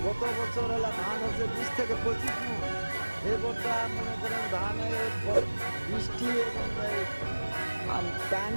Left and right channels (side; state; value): both; inverted; correlation -1.00